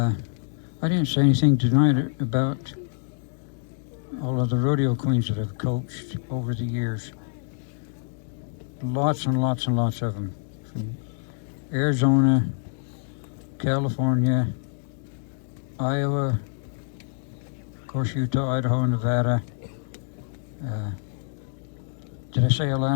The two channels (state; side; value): silent; right; digital silence